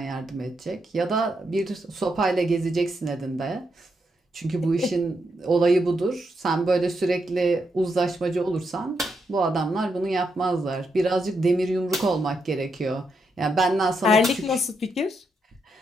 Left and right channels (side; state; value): both; normal; correlation 0.81